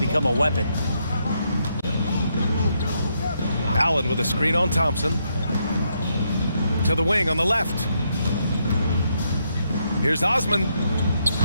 a weapon. Allen with a screen on Thompson. To the wing on the left. Here's Osman.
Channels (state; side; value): inverted; both; correlation -0.78